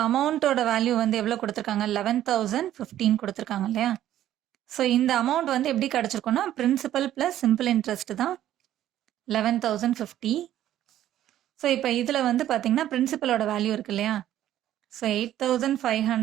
அமௌண்ட்டோட வேல்யூ எவ்வளோ கொடுத்துருக்காங்க, 11,015 கொடுத்துருக்காங்க இல்லையா. ஸோ இந்த அமௌண்ட் எப்படி கிடச்சிருக்கோன்னா பிரின்சிபல் ப்ளஸ் சிம்பிள் இன்ட்ரெஸ்ட் தான் 11,050. ஸோ இப்போ இதில் பார்த்தீங்கன்னா பிரின்சிபலோட வேல்யூ இருக்கு இல்லையா. So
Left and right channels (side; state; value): left; quieter; 12.3 dB